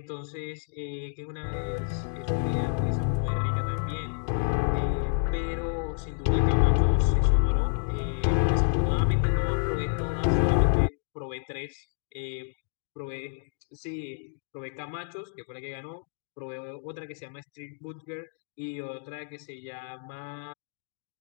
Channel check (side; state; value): right; silent; digital silence